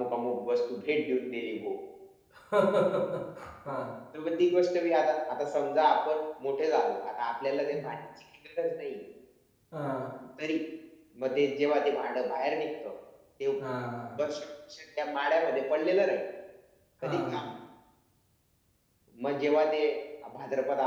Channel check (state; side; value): identical; both; correlation 1.00